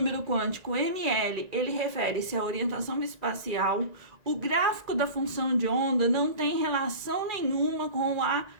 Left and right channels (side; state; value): left; late; 1.9 ms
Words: quântico, ml, ele refere-se à orientação espacial. O gráfico da função de onda não tem relação nenhuma com a